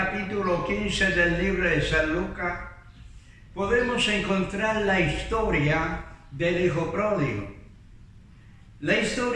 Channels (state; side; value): identical; both; correlation 1.00